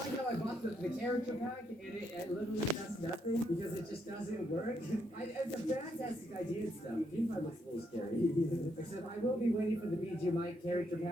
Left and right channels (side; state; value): both; normal; correlation 0.77